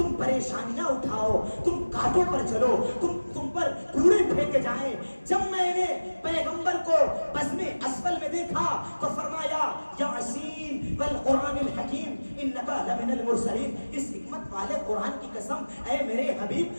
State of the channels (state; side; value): inverted; both; correlation -1.00